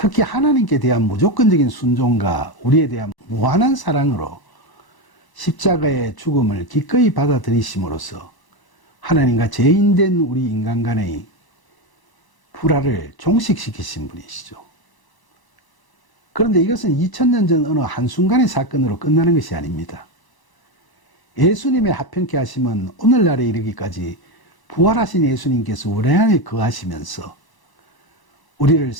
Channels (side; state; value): right; late; 1.0 ms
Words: 하나님께 대한 무조건적인 순종과 우리에 대한 무한한 사랑으로 십자가의 죽음을 기꺼이 받아들이심으로써 하나님과 죄인된 우리 인간 간의 불화를 종식시키신 분이시죠. 그런데 이것은 2000년 전 어느 한순간의 사건으로 끝나는 것이 아닙니다. 예수님의 화평케 하심은 오늘날에 이르기까지 부활하신 예수님께서 우리 안에 거하시면서 우리를